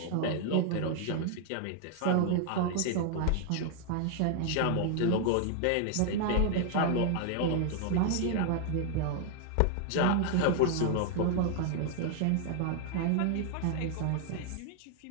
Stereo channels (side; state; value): both; different; correlation 0.00